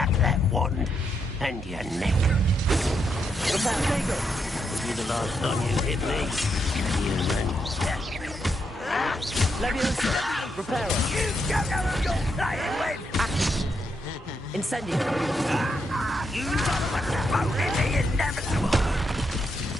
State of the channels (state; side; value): normal; both; correlation 0.80